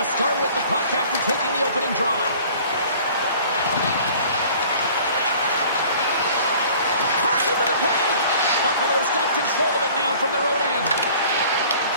to start with the puck after taking the opening draw. Push into the paint. Buffalo's got control of it now from their own end.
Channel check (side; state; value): both; inverted; correlation -0.49